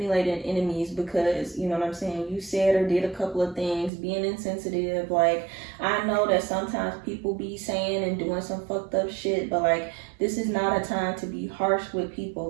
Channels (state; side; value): drops out; left; at 3.9 s